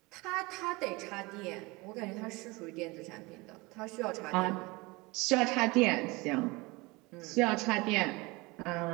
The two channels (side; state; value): left; quieter; 24.1 dB